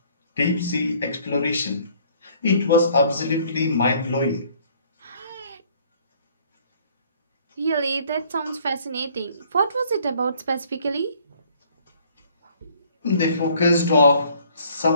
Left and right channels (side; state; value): both; inverted; correlation -0.59